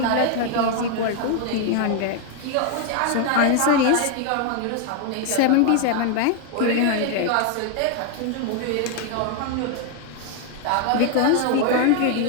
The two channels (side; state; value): both; different; correlation 0.01